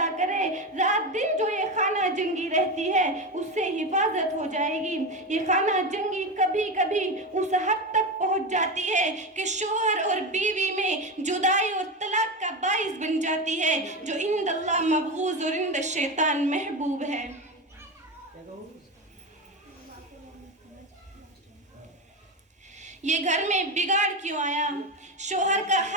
کرے، رات دن جو یہ خانہ جنگی رہتی ہے اس سے حفاظت ہو جائے گی۔ یہ خانہ جنگی کبھی کبھی اس حد تک پہنچ جاتی ہے کہ شوہر اور بیوی میں جدائی اور طلاق کا باعث بن جاتی ہے، جو عند اللہ مبغوض اور عند الشیطان محبوب ہے۔ یہ گھر میں بگاڑ کیوں آیا؟ شوہر کا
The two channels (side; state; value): both; normal; correlation 0.18